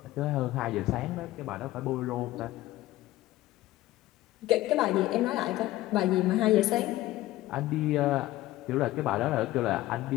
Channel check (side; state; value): right; quieter; 16.2 dB